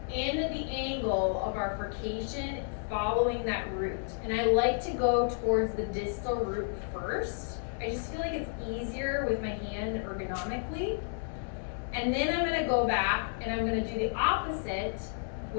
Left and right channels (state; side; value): silent; right; digital silence